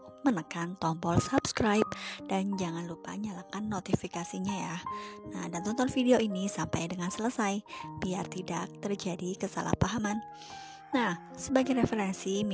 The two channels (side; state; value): both; identical; correlation 1.00